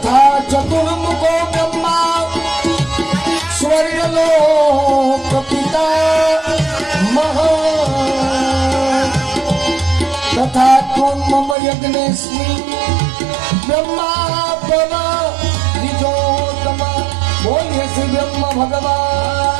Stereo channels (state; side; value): drops out; left; at 11.6 s